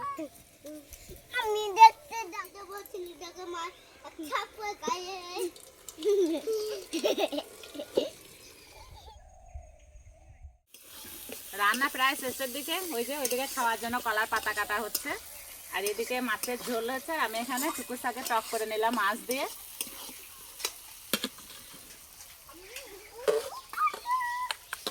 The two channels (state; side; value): identical; both; correlation 1.00